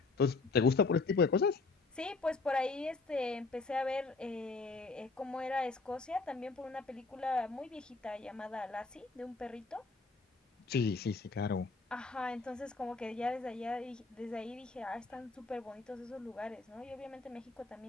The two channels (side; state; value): right; quieter; 3.9 dB